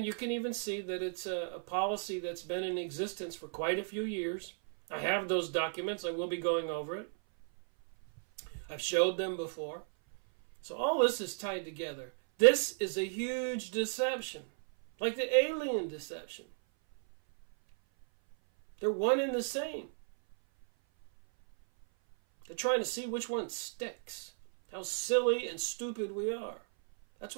you can even see that it's a policy that's been in existence for quite a few years. I have those documents. I will be going over it. I've showed them before. So all this is tied together. This is a huge deception, like the alien deception. They're one and the same. They're trying to see which one sticks. How silly and stupid we are. That's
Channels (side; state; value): left; silent; 55 dB below the other